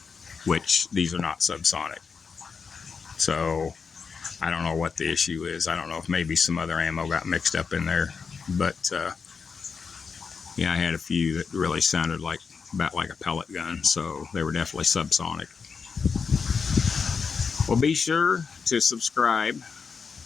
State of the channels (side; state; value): right; quieter; 5.6 dB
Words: which these are not subsonic. So I don't know what the issue is. I don't know if maybe some other ammo got mixed up in there, but yeah, I had a few that really sounded like about like a pellet gun, so they were definitely subsonic. Well, be sure to subscribe.